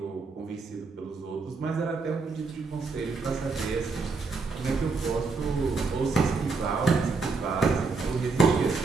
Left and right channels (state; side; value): quieter; left; 4.2 dB